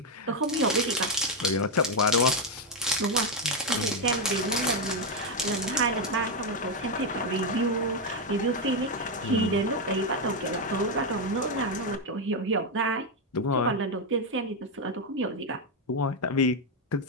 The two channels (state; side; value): normal; both; correlation 0.04